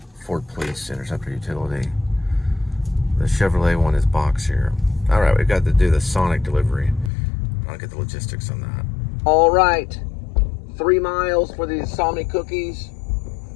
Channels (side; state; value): right; drops out; at 7.1 s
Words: Ford Police Interceptor Utility. The Chevrolet one is boxier. All right, we've got to do the Sonic delivery. I'll get the logistics on that. All right, 3 miles for the Insomnia cookies.